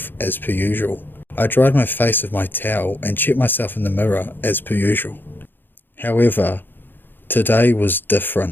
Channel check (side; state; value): right; late; 0.095 ms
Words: as per usual. I dried my face with my towel and checked myself in the mirror, as per usual. However, today was